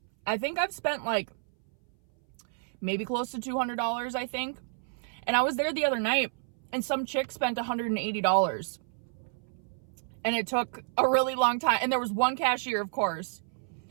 I think I've spent like maybe close to $200, I think. And I was there the other night and some chick spent $180. And it took a really long time. And there was one cashier, of course.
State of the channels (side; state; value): left; silent; 58 dB below the other